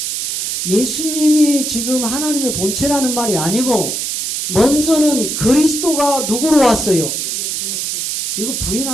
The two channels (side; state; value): right; noise; hiss, 2 dB below the sound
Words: 예수님이 지금 하나님의 본체라는 말이 아니고 먼저는 그리스도가 누구로 왔어요? 이거